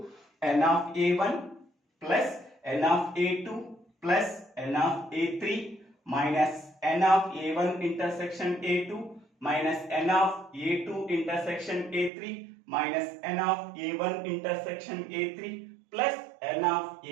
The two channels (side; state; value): left; drops out; at 12.1 s